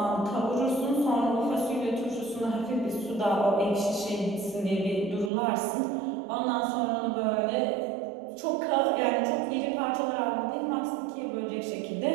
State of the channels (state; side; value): drops out; left; at 5.3 s